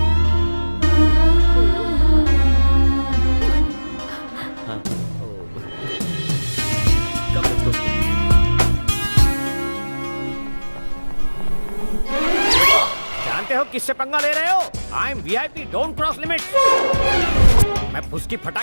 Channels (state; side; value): inverted; both; correlation -1.00